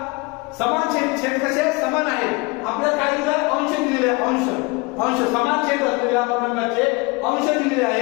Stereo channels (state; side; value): quieter; right; 26.8 dB